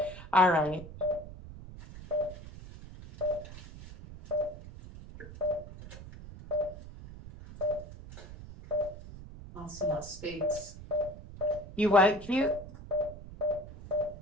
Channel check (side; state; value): right; noise; rumble, 14 dB below the sound